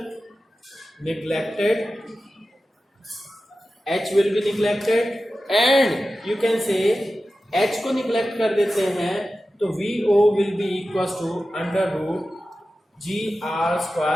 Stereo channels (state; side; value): normal; both; correlation 0.94